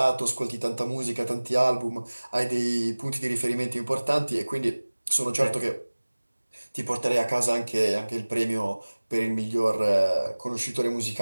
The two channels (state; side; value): inverted; both; correlation -1.00